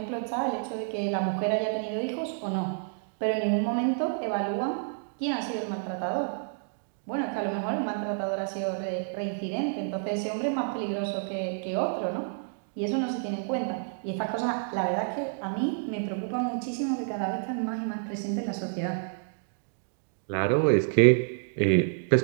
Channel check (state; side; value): silent; left; digital silence